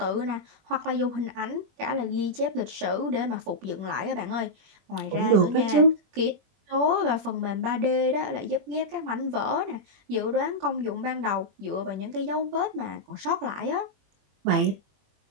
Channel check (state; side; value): late; left; 21 ms